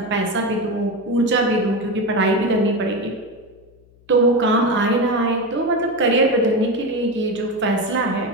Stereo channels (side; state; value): left; noise; hum, 29 dB below the sound